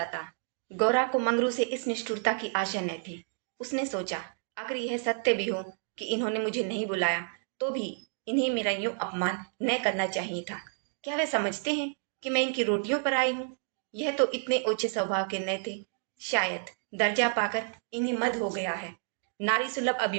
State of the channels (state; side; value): silent; left; 58 dB below the other